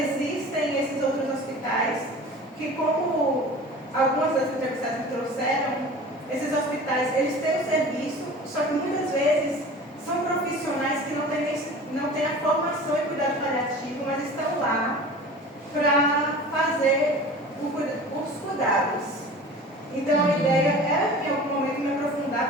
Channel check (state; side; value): normal; both; correlation 0.39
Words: esses outros hospitais que, como algumas das entrevistadas me trouxeram, esses hospitais, eles têm o serviço, só que muitas vezes são profissionais que não têm a formação em cuidado paliativo, mas estão lá para fazer os cuidados. Então a ideia é, em algum momento, me